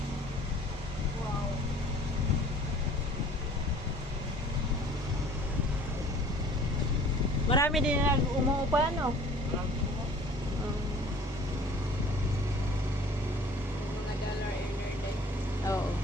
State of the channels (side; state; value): both; normal; correlation 0.50